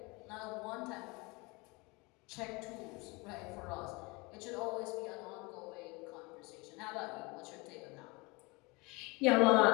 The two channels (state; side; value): quieter; right; 26.3 dB